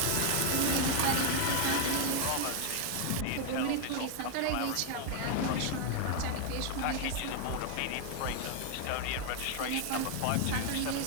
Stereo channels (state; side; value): different; both; correlation 0.00